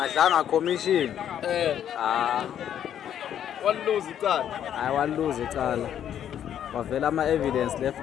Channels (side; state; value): right; quieter; 9.9 dB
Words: commission Walose icala. hayi waluza icala wavela ama-evidence